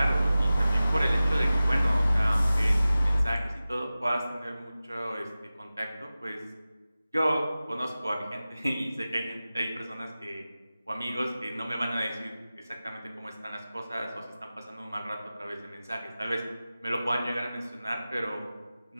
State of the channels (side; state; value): both; inverted; correlation -0.96